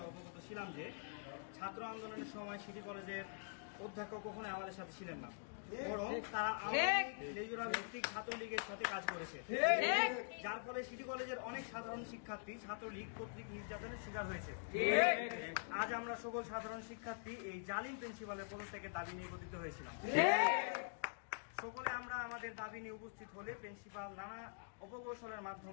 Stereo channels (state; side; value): silent; right; digital silence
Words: অবগত ছিলাম যে ছাত্র আন্দোলনের সময় সিটি কলেজের অধ্যক্ষ কখনো আমাদের সাথে ছিলেন না, বরং তারা লেজুরা ভিত্তিক ছাত্রলীগের সাথে কাজ করেছে, যার ফলে সিটি কলেজের অনেক সাধারণ শিক্ষার্থী ছাত্রলীগ কর্তৃক নির্যাতনের শিকার হয়েছে। আজ আমরা সকল সাধারণ শিক্ষার্থী এই জালিম প্রিন্সিপালের পদত্যাগের দাবি নিয়ে একত্রিত হয়েছিলাম। সকলে আমরা আমাদের দাবি নিয়ে উপস্থিত হলে প্রিন্সিপাল নানা অপকৌশলের